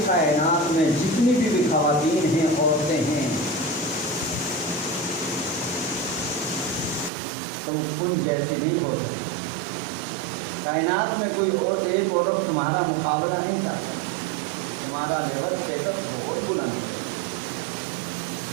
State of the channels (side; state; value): left; drops out; at 7.1 s